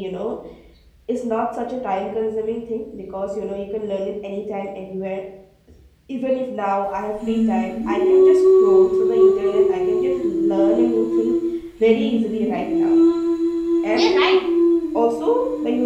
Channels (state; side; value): identical; both; correlation 1.00